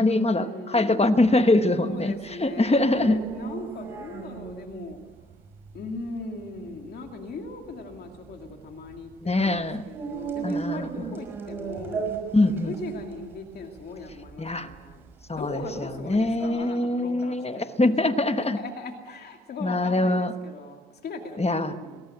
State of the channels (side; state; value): both; normal; correlation 0.70